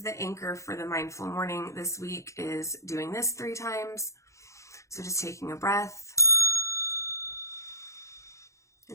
the anchor for the mindful morning this week, is doing this 3 times. So just taking a breath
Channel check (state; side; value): late; right; 0.15 ms